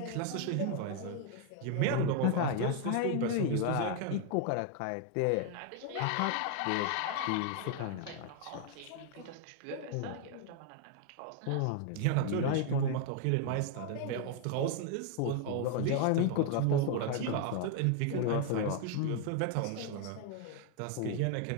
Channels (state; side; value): different; both; correlation 0.01